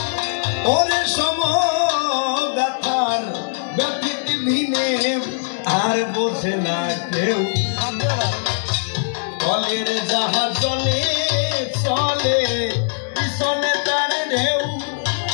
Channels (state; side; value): silent; right; 65 dB below the other